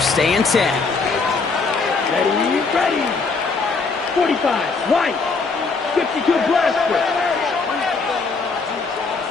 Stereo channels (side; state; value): right; quieter; 4.4 dB